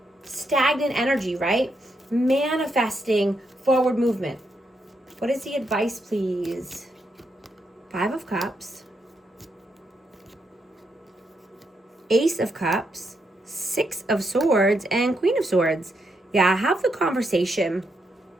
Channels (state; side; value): normal; both; correlation 0.80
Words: stagnant energy, right? Manifesting forward movement. What is the advice, please? Five of Cups, Ace of Cups, Six of Swords, and Queen of Swords. Yeah, have the conversation.